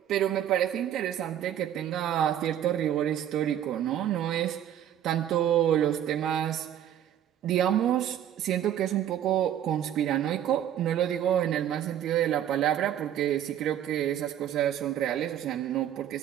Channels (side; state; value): left; quieter; 10.7 dB